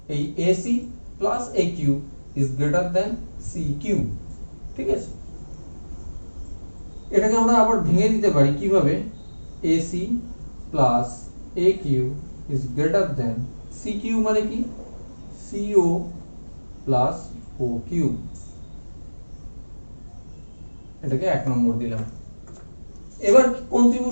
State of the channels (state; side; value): inverted; both; correlation -1.00